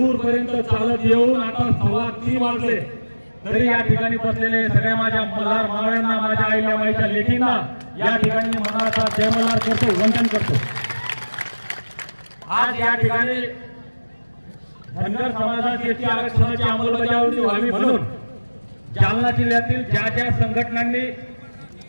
चालत येऊन आता 3:15 वाजले तरी या ठिकाणी बसलेले सगळ्या माझ्या मल्हार मावळ्यांना, माझ्या आईला, माईच्या लेकींना या ठिकाणी मनाचा जय मल्हार करतो, वंदन करतो। आज या ठिकाणी धनगर समाजाची आरक्षणाची अंमलबजावणी व्हावी म्हणून जालना जिल्ह्यातील ज्या ज्या संघटनांनी,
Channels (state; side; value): inverted; both; correlation -1.00